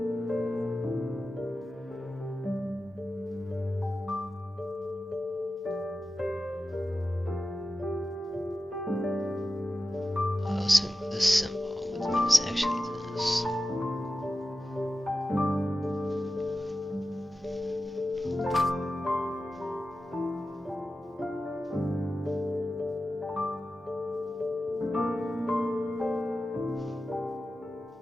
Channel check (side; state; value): both; normal; correlation 0.93